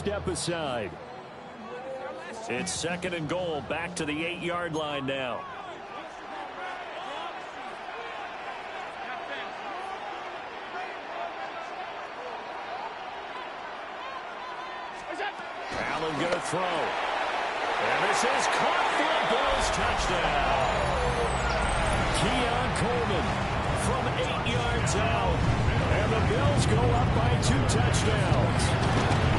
aside. It's 2nd and goal, back to the 8-yard line now. Allen going to throw. And this is caught for a Bills touchdown. Keon Coleman from 8 yards out. And the Bills go up by 2 touchdowns.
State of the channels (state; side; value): identical; both; correlation 1.00